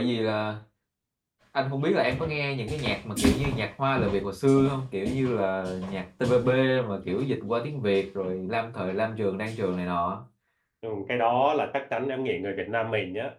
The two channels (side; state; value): both; identical; correlation 1.00